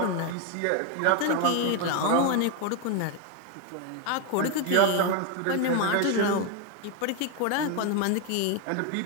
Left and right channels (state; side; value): different; both; correlation 0.02